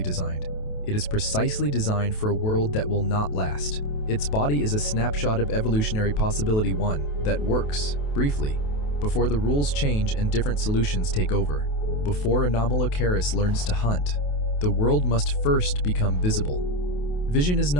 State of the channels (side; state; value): right; late; 28 ms